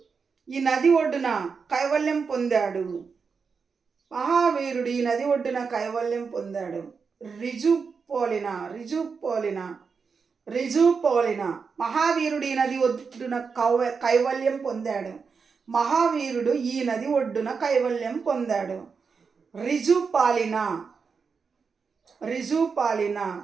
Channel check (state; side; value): quieter; left; 5.4 dB